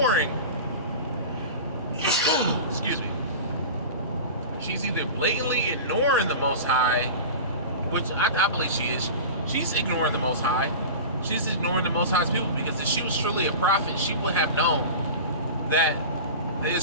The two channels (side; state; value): both; inverted; correlation -0.31